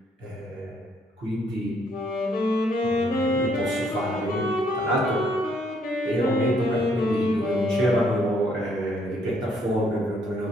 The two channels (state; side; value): normal; both; correlation 0.68